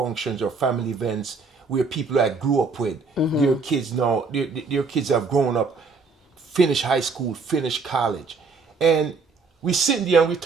or family events where people that I grew up with, their kids now, their kids have grown up, finished high school, finished college, and we sitting there and we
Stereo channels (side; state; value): left; quieter; 4.4 dB